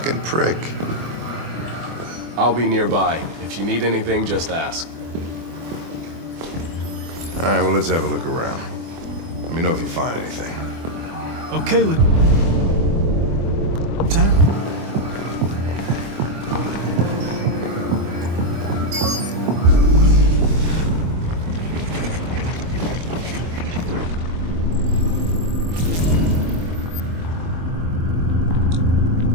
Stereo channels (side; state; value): left; late; 24 ms